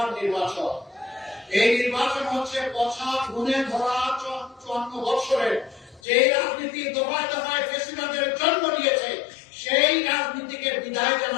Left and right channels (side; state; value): right; drops out; at 6.0 s